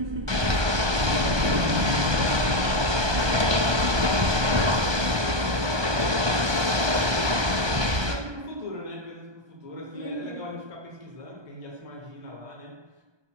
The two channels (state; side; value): late; left; 1.2 ms